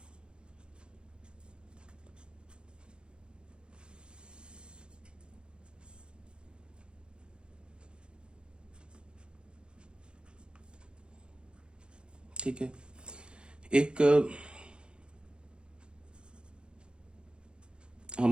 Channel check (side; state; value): left; late; 0.053 ms